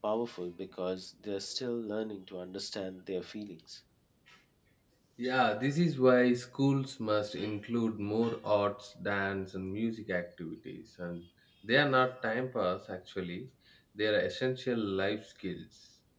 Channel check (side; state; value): both; identical; correlation 1.00